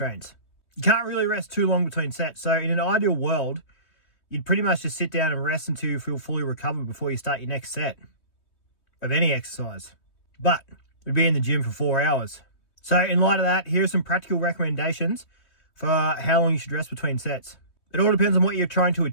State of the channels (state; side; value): late; right; 3.2 ms